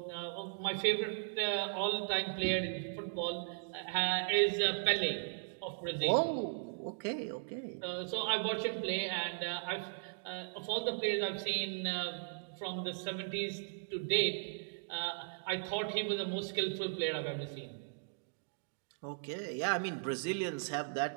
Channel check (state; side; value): silent; left; digital silence